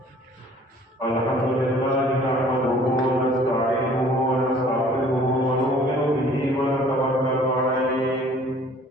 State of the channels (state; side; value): normal; both; correlation 0.53